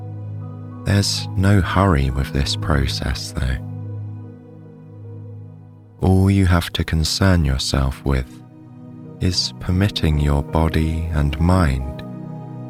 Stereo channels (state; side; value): identical; both; correlation 1.00